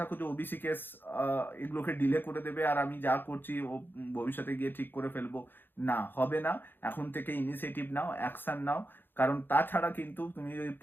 যে ওবিসি কেস এগুলোকে ডিলে করে দেবে আর আমি যা করছি ও ভবিষ্যতে গিয়ে ঠিক করে ফেলবো, না হবে না। এখন থেকে ইনিশিয়েটিভ নাও, অ্যাকশন নাও। কারণ তাছাড়া কিন্তু তুমি যদি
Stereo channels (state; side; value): late; right; 0.097 ms